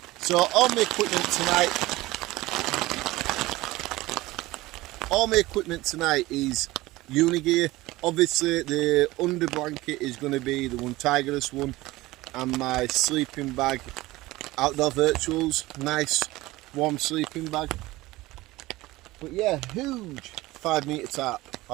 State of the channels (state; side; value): quieter; left; 19.0 dB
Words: So all my equipment tonight is Unigear. Obviously the under blanket is going to be the ENGLISHWOODSMAN one, and my sleeping bag, Outdoor Virtuals, nice warm sleeping bag. But yeah, huge 5-metre tarp.